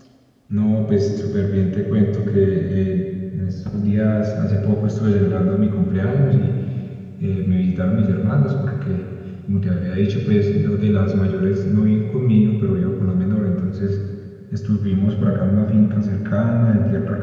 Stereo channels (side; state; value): both; identical; correlation 1.00